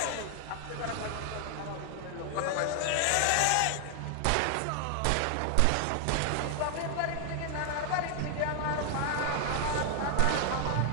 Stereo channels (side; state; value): both; different; correlation 0.00